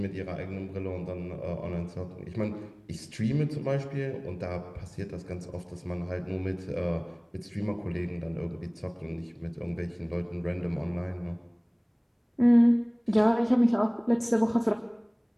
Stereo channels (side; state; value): both; identical; correlation 1.00